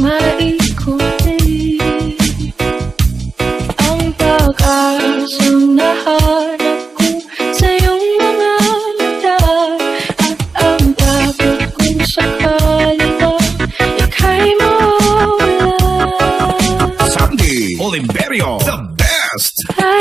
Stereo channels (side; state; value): left; quieter; 4.1 dB